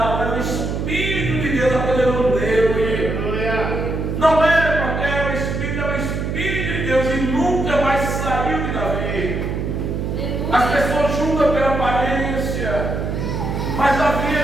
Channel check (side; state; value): right; noise; hum, 2 dB below the sound